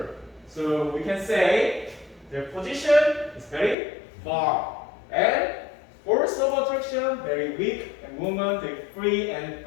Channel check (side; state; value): right; drops out; at 3.8 s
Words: So we can say their position is very far and force of attraction very weak and movement very free and